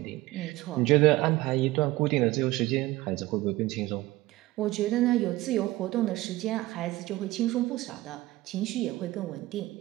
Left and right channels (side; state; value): left; quieter; 18.2 dB